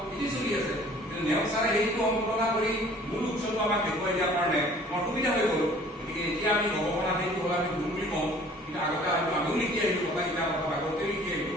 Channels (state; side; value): normal; both; correlation 0.52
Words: এটি চলি আছে কিন্তু নেওচাৰে সেইটো সম্পাদনা কৰি মূল উৎসৱটো আমাক দেখুৱাই দিয়াৰ কাৰণে আমাৰ সুবিধা হৈ গ'ল গতিকে এতিয়া আমি গৱেষণা সেইটো হ'ল আমি গুৰু বুলি কওঁ কিন্তু আগতে হয়তো আমিও লিখি আহিলোঁ কথা গীতা কথা ভাগৱতে লিখি